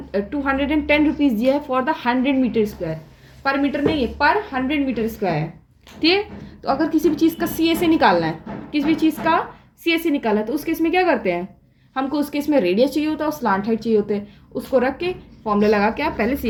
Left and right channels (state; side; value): identical; both; correlation 1.00